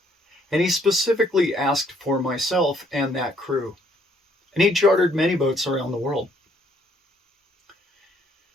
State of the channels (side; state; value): both; normal; correlation 0.66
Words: And he specifically asked for myself and that crew. And he chartered many boats around the world.